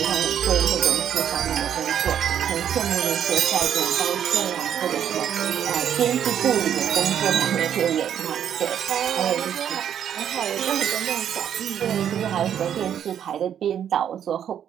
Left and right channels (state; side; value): quieter; left; 9.3 dB